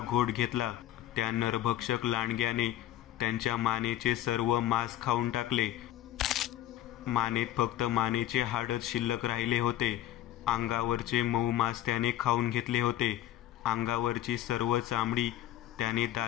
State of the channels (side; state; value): right; quieter; 13.1 dB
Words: घेतला. त्या नरभक्षक लांडग्याने त्यांच्या मानेचे सर्व मांस खाऊन टाकले. मानेत फक्त मानेचे हाडच शिल्लक राहिले होते. अंगावरचे मऊ मांस त्याने खाऊन घेतले होते. अंगावरची सर्व चामडी त्याने